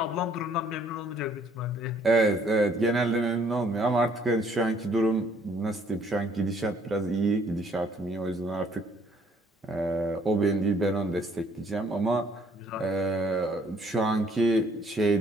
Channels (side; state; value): both; normal; correlation 0.62